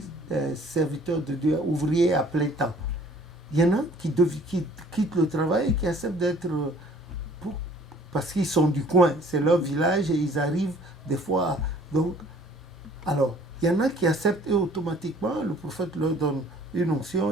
serviteur de Dieu, ouvrier à plein temps. Il y en a qui quittent le travail et qui acceptent d'être... parce qu'ils sont du coin, c'est leur village et ils arrivent des fois... Donc, alors, il y en a qui acceptent et automatiquement, le prophète leur donne une onction,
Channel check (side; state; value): both; normal; correlation 0.54